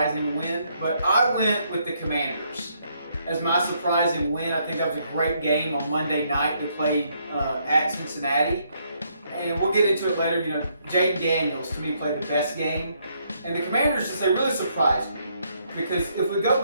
win. But I went with the Commanders as my surprising win. I think that was a great game on Monday night. They played at Cincinnati. And we'll get into it later. You know, Jaden Daniels, to me, played the best game. And the Commanders, just they really surprised me. Because if we go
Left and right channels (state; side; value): inverted; both; correlation -0.72